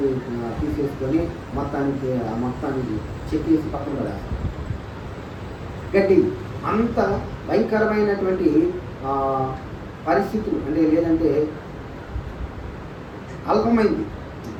తీసేసుకొని మొత్తానికి చెక్కేసి పక్కన పడేస్తాం. గడ్డి అంత భయంకరమైనటువంటి పరిస్థితులు అంటే లేదంటే అల్పమైంది.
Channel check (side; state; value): both; identical; correlation 1.00